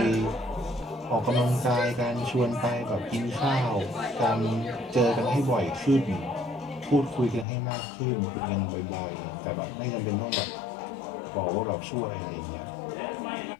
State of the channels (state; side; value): drops out; right; at 7.5 s